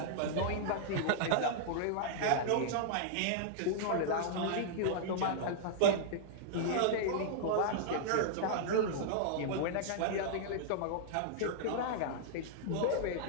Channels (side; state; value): both; different; correlation -0.01